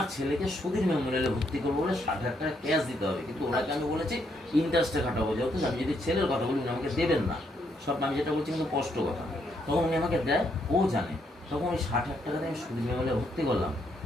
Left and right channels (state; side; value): normal; both; correlation 0.75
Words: ছেলেকে সুধীর মেমোরিয়ালে ভর্তি করবো বলে 60,000 টাকা ক্যাশ দিতে হবে, কিন্তু ওনাকে আমি বলেছি ইন্টারেস্টে খাটাবো, যেহেতু আমি যদি ছেলের কথা বলি উনি আমাকে দেবেন না, সব আমি যেটা বলছি কিন্তু স্পষ্ট কথা। তখন উনি আমাকে দেয়, ও জানে। তখন ওই 60,000 টাকা দিয়ে আমি সুধীর মেমোরিয়ালে ভর্তি করলাম,